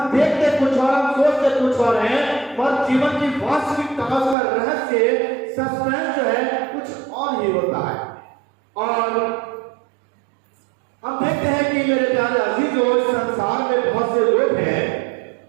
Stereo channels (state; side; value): drops out; left; at 4.4 s